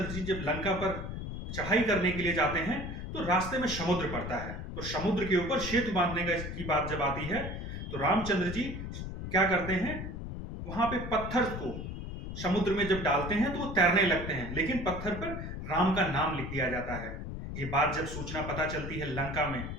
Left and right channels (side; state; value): left; noise; rumble, 7 dB below the sound